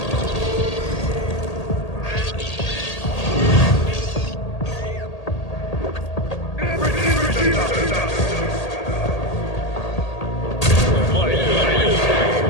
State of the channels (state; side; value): late; right; 1.8 ms